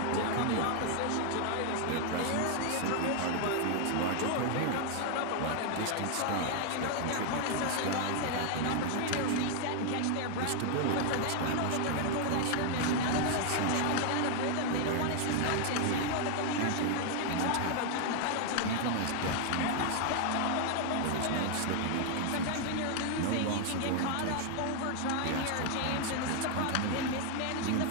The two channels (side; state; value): both; different; correlation 0.00